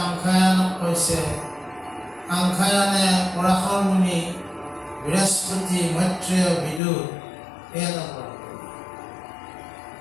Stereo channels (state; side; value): drops out; right; at 6.8 s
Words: কৈছে, সাংখ্যায়নে পৰাশৰ মুনি, বৃহস্পতি, মৈত্ৰেয়, বিদুৰ এয়া কৰে।